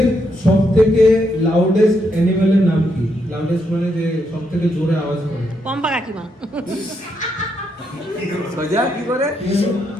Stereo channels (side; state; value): both; normal; correlation 0.78